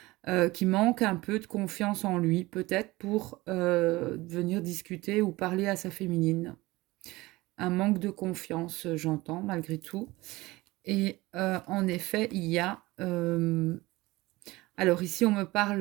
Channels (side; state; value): left; quieter; 20.3 dB